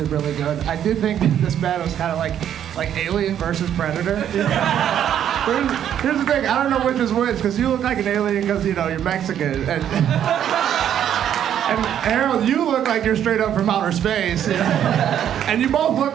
really good. I do think this battle is kind of like Alien versus Predator. Here's the thing. I don't know which is which, because you look like an alien because, you're Mexican. And Harold, you look like you're straight up from outer space. And you both look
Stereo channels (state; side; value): quieter; left; 9.9 dB